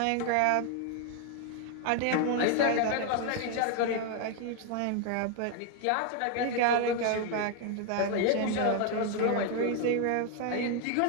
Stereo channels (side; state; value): both; different; correlation 0.00